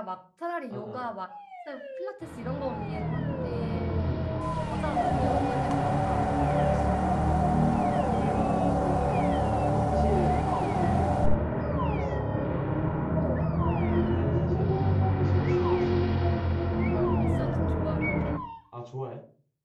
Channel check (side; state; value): both; identical; correlation 1.00